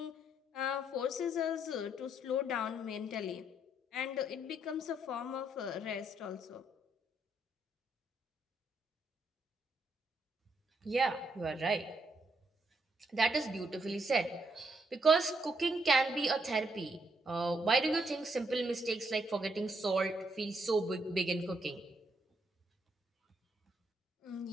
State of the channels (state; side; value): normal; both; correlation 0.75